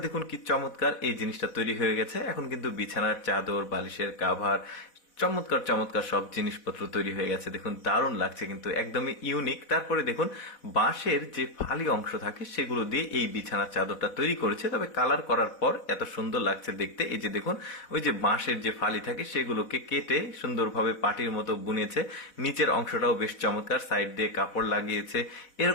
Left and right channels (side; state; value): right; late; 4.1 ms